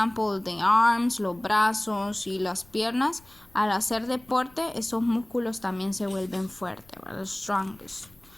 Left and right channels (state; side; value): noise; left; rumble, 28 dB below the sound